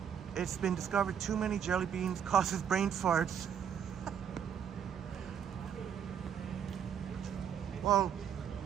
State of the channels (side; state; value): left; quieter; 8.3 dB